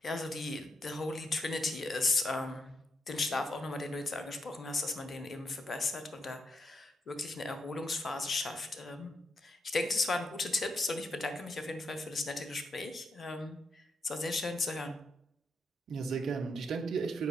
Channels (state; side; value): normal; both; correlation 0.82